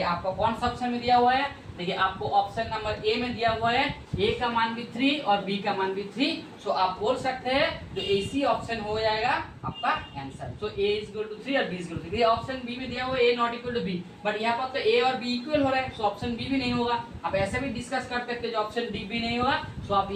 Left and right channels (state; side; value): identical; both; correlation 1.00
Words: आपका कौन सा ऑप्शन में दिया हुआ है देखिए आपको ऑप्शन नंबर ए में दिया हुआ है ए का मान भी 3 और बी का मान भी 3, सो आप बोल सकते हैं जो एसी ऑप्शन हो जाएगा आपका answer. So A is equal to 3 और B is equal to 3। Option B में दिया हुआ है A not equal to B, but यहाँ पर तो ए और बी इक्वल हो रहा है, सो ऑप्शन बी भी नहीं होगा। आप ऐसे भी डिस्कस कर सकते हैं जो ऑप्शन डी भी नहीं होगा, सो आप